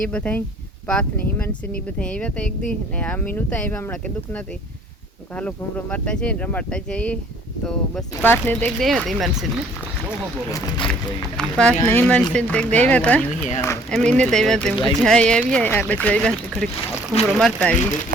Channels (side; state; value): both; normal; correlation 0.58